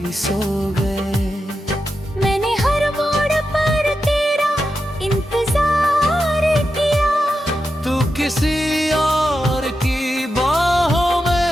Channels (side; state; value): both; normal; correlation 0.89